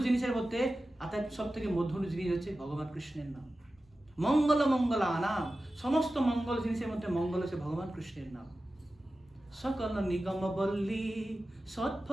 জিনিসের মধ্যে সব থেকে মধুর জিনিস হচ্ছে ভগবান কৃষ্ণের নাম। মঙ্গল মঙ্গলানাম, সমস্ত মঙ্গল জিনিসের মধ্যে মঙ্গল হচ্ছে ভগবান কৃষ্ণের নাম। সকল নিগম বল্লী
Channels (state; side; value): normal; both; correlation 0.94